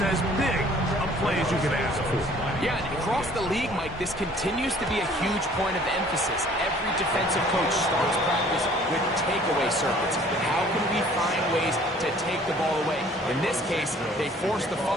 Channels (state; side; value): normal; both; correlation 0.54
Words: as big a play as you can ask for. Yeah, and across the league, Mike, this continues to be a huge point of emphasis. Every defensive coach starts practice with takeaway circuits. How can we find ways to take the ball away? In this case, they force the